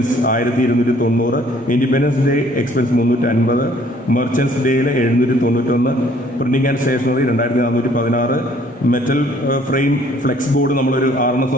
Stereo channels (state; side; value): normal; both; correlation 0.59